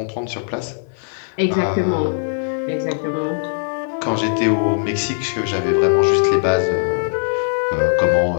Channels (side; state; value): right; silent; digital silence